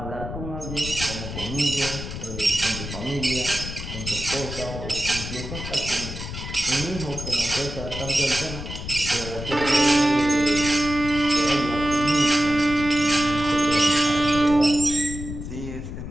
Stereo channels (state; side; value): noise; left; rumble, 8 dB below the sound